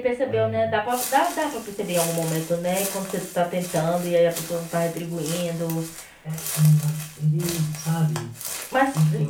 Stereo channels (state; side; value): identical; both; correlation 1.00